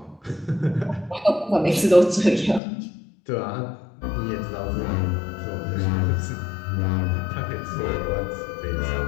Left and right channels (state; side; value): drops out; right; at 2.6 s